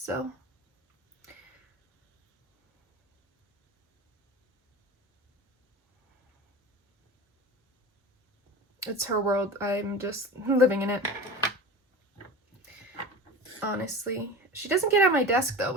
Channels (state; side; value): normal; both; correlation 0.32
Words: It's her world. I'm just living in it. Honestly. She doesn't get on my desk though,